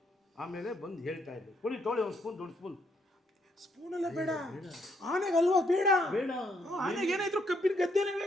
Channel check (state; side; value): normal; both; correlation 0.73